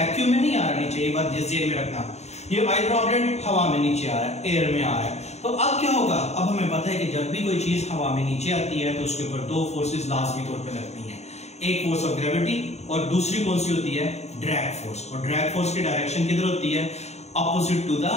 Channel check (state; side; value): late; right; 0.32 ms